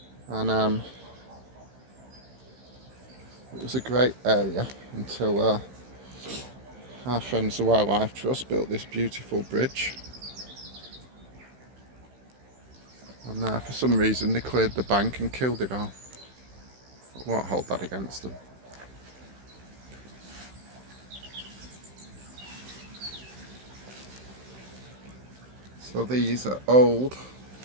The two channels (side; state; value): left; late; 16 ms